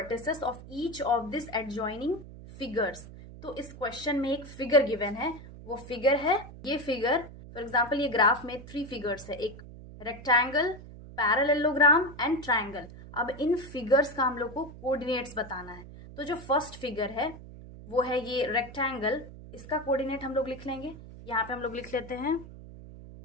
of each of this adjoining figures. तो इस question में एक figure given है, वो figure है ये figure. For example ये ग्राफ में 3 फिगर्स है, एक रेक्टेंगल, पैरेललोग्राम एंड ट्रायंगल. अब इन फिगर्स का हम लोग को कोऑर्डिनेट्स बताना है. तो जो फर्स्ट फिगर है वो है ये रेक्टेंगल, इसका कोऑर्डिनेट हम लोग लिख लेंगे. यहाँ पे हम लोग लिख लेते हैं.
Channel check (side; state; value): right; noise; hum, 15 dB below the sound